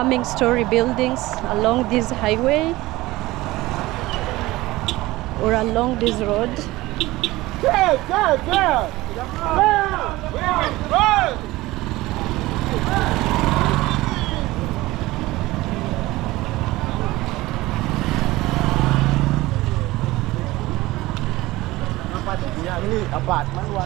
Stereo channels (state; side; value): quieter; left; 18.9 dB